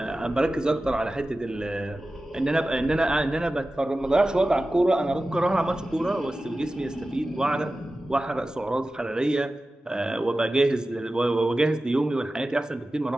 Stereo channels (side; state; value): both; normal; correlation 0.95